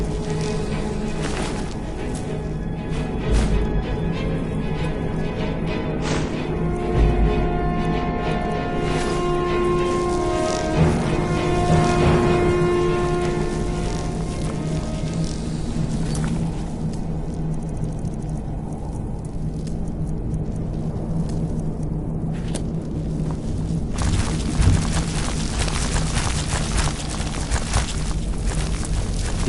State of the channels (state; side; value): identical; both; correlation 1.00